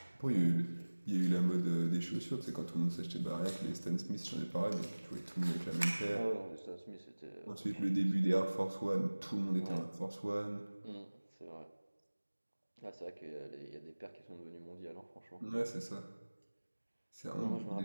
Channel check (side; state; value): both; inverted; correlation -1.00